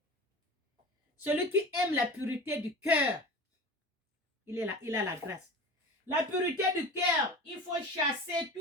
Celui qui aime la pureté du cœur, il a la grâce. La pureté du cœur, il faut chasser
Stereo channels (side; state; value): both; normal; correlation 0.34